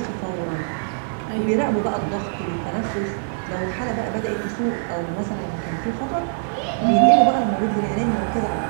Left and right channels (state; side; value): silent; left; digital silence